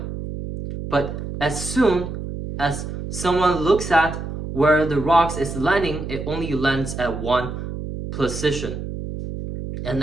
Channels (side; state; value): right; noise; hum, 7 dB below the sound